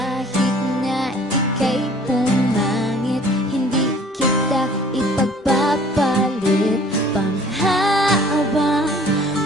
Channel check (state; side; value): normal; both; correlation 0.52